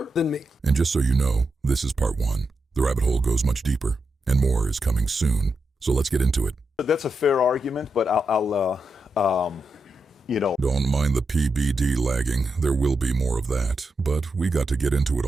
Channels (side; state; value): both; normal; correlation 0.87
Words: than me. And just so you know, this is part one. The rabbit hole goes much deeper, and more is coming soon. So let's get into it. That's a fair argument, but Don't mind the PBD lagging. There will be more of that, but we got to get into it